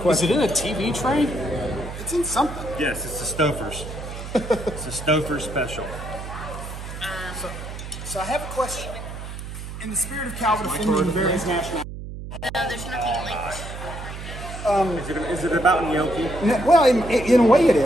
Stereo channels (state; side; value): noise; right; hum, 9 dB below the sound